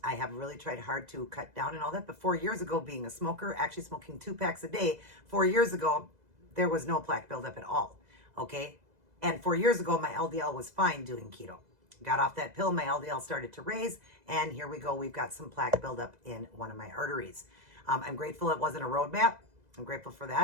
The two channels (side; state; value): left; late; 2.0 ms